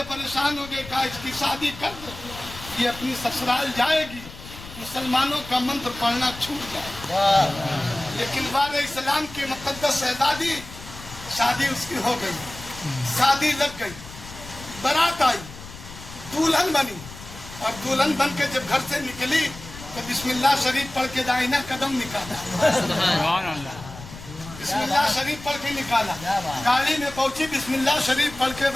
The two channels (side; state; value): left; noise; rumble, 15 dB below the sound